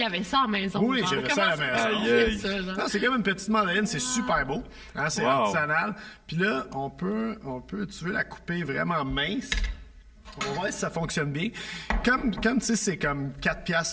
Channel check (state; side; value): identical; both; correlation 1.00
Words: y avait ça à la maison. Oui, genre. j'avais ça à la Comment maison. on fait ça, genre? Non, c'est comme une petite mandarine, c'est super beau. Hein, c'est Wow. artisanal. Puis là, on peut, tu veux la couper vraiment mince. On va voir si ça fonctionne bien. Comme tu sais, c'est comme 4